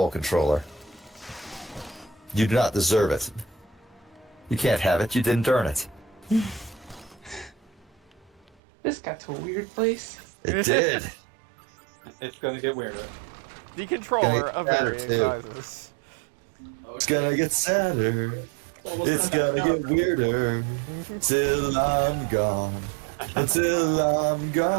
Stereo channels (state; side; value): drops out; left; at 8.6 s